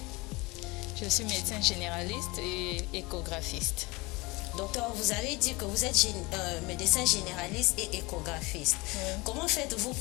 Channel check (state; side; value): quieter; right; 24.1 dB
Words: Je suis médecin généraliste et échographiste. Docteur, vous avez dit que vous êtes médecin généraliste et échographiste. Oui. Comment faites-vous